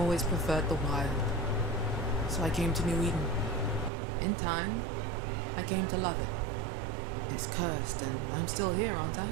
preferred the wild. So I came to New Eden. In time, I came to love it. It's cursed, and I'm still here, aren't I?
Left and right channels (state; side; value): drops out; left; at 3.9 s